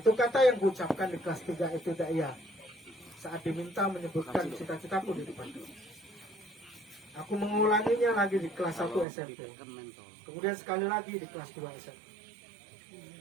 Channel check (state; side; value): drops out; left; at 9.1 s